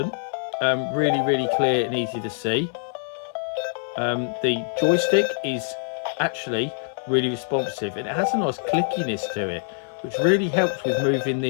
really clear and easy to see. The joystick is actually really responsive, and it has a nice clickiness to it, which really helps with moving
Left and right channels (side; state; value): right; silent; 59 dB below the other